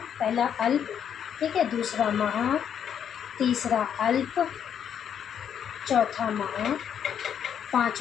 पहला अल्प, ठीक है, दूसरा महा, तीसरा अल्प, चौथा महा,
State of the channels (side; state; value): right; quieter; 8.6 dB